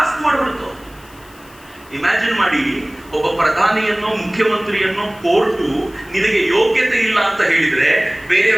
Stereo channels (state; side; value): noise; left; hiss, 25 dB below the sound